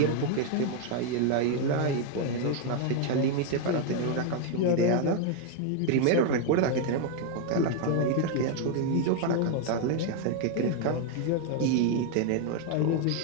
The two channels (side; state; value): both; different; correlation 0.01